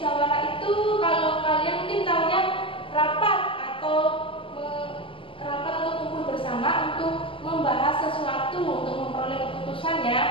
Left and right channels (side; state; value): right; late; 0.25 ms